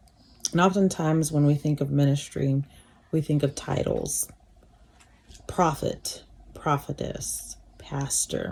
And oftentimes, when we think of ministry, we think of titles: prophet, prophetess,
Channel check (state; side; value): identical; both; correlation 1.00